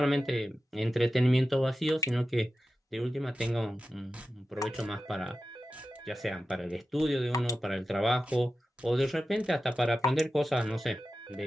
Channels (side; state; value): both; normal; correlation 0.93